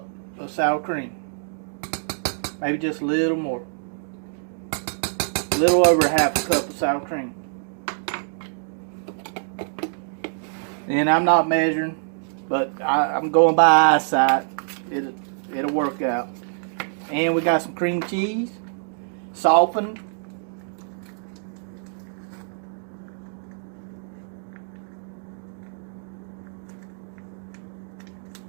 of sour cream. Maybe just a little more. A little over 1/2 cup of sour cream. And I'm not measuring, but I'm going by eyesight. It'll work out. And we got some cream cheese, softened.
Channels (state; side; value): silent; left; digital silence